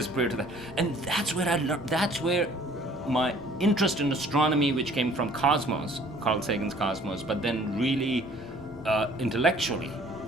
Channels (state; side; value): normal; both; correlation 0.55